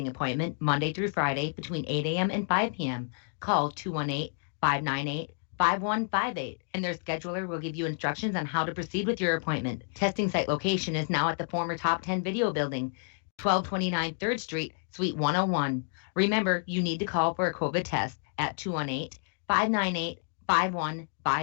appointment Monday through Friday between 8 a.m. and 5 p.m. Call 218-598-5158, and their scheduler will give you instructions on how to proceed with your appointment. Testing site location is now at the former Top 10 Video Building, 1229 3rd Street, Suite 101. Remember, you need to call for a COVID test at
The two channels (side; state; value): right; silent; digital silence